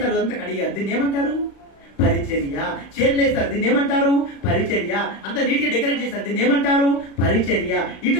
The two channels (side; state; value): right; late; 36 ms